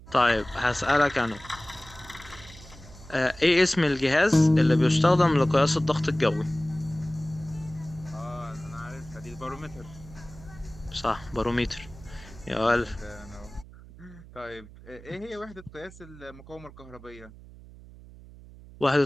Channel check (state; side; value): noise; right; hum, 19 dB below the sound